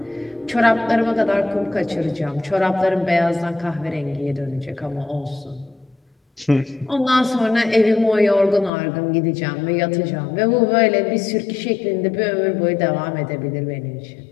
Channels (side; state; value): right; drops out; at 8.7 s